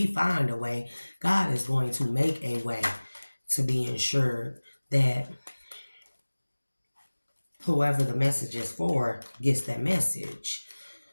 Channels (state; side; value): inverted; both; correlation -1.00